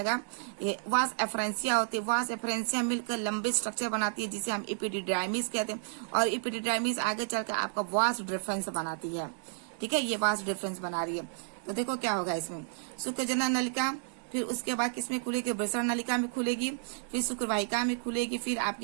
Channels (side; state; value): left; silent; digital silence